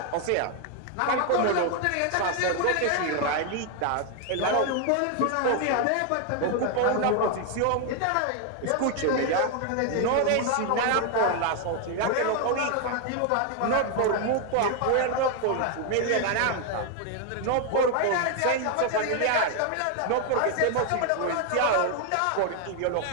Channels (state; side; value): different; both; correlation 0.00